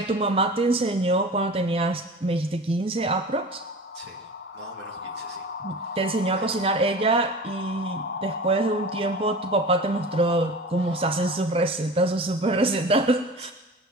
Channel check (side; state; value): both; normal; correlation 0.35